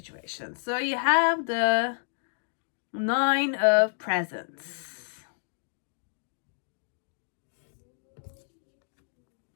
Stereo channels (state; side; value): silent; right; digital silence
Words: So you have the 9 of Presents.